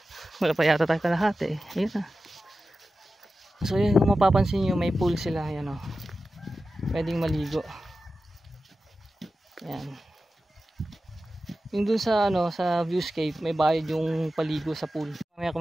Wala pa yata tayo kalahati. Ayun na. So, yun, kung mapapansin nyo, may pool sila. Ayan o. Pwedeng maligo. Ayan. Yung dun sa, sa viewscape, may bayad yung paligo sa pool. Mamaya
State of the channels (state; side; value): normal; both; correlation 0.93